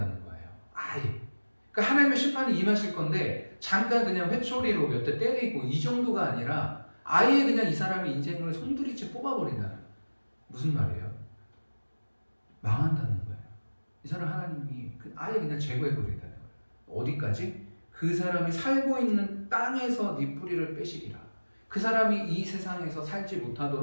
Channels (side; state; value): both; inverted; correlation -1.00